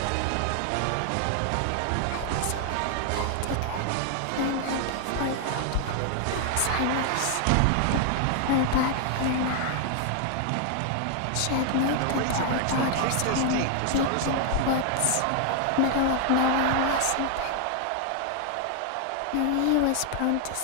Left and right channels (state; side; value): different; both; correlation 0.00